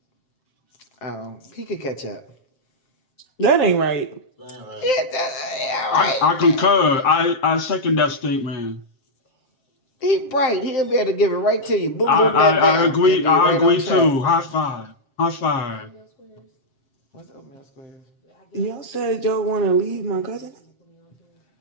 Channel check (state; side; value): late; right; 7.5 ms